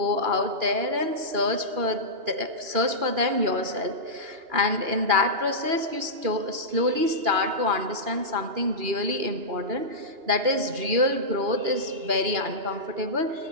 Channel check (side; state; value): left; late; 2.9 ms